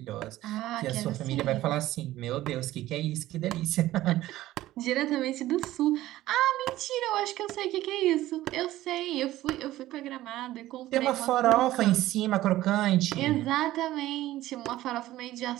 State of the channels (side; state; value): left; quieter; 15.4 dB